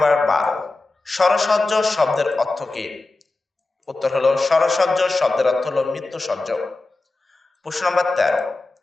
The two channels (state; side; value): quieter; right; 3.2 dB